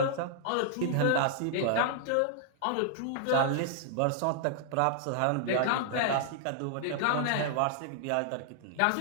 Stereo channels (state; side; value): different; both; correlation -0.01